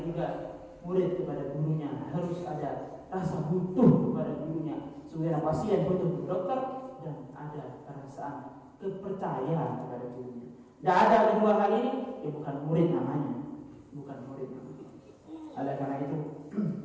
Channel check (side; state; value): both; identical; correlation 1.00